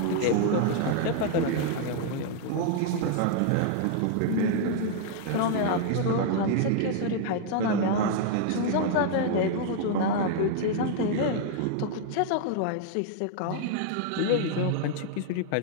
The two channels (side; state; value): both; different; correlation 0.00